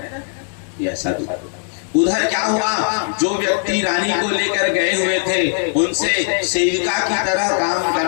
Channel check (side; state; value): right; silent; 61 dB below the other